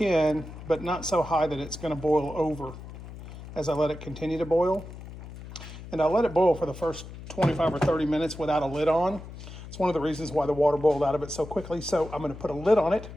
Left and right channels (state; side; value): noise; left; hum, 13 dB below the sound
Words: but not so high that it's gonna boil over as I let it continue to boil. And I'll let it boil for the first 25 or 30 minutes without a lid on. It's one of the reasons why the water boiled out of it so quickly. So I'm gonna put a lid on it